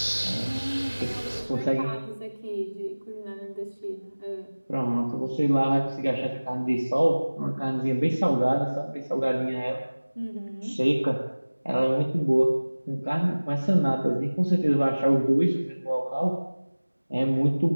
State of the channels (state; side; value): inverted; both; correlation -1.00